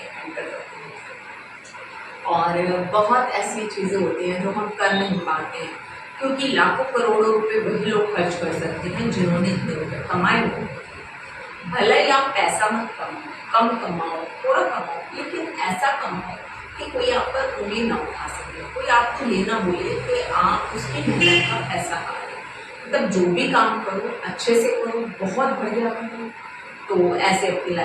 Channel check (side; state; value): both; identical; correlation 1.00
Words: एंटर करती हूँ। और बहुत ऐसी चीज़ें होती हैं जो हम कर नहीं पाते हैं, क्योंकि लाखों करोड़ों रुपए वही लोग खर्च कर सकते हैं जिन्होंने इतने रुपये कमाए हों। भले ही आप पैसा मत कमाओ, कम कमाओ, थोड़ा कमाओ, लेकिन ऐसा कमाओ कि कोई आप पर उंगली ना उठा सके, कोई आपको ये ना बोले कि आप उसकी मेहनत का पैसा खा रहे हो। मतलब जो भी काम करो अच्छे से करो, बहुत बढ़िया करो, तो ऐसे अपनी